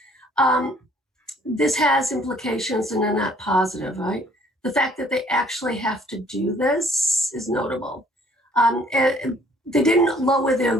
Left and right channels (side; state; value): both; normal; correlation 0.60